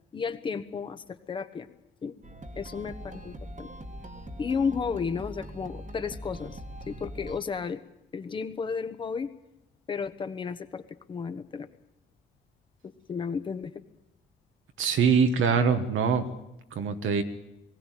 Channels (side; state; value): both; normal; correlation 0.47